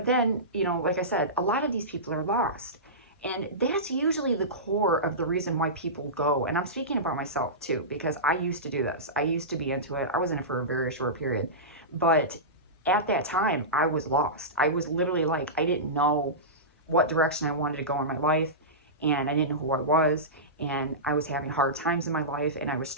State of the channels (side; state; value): both; normal; correlation -0.18